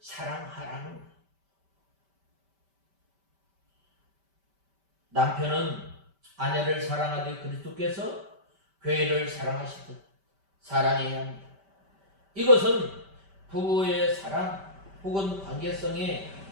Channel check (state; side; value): late; left; 5.1 ms